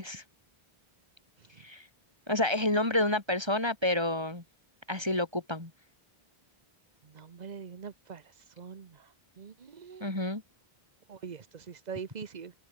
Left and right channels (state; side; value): late; left; 1.3 ms